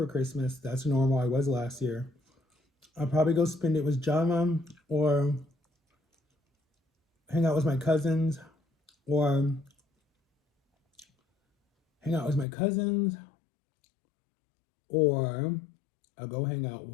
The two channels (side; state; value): right; drops out; at 12.5 s